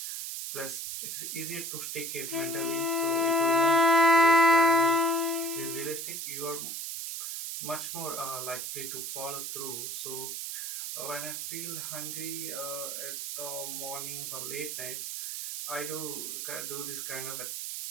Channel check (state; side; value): noise; right; hiss, 5 dB below the sound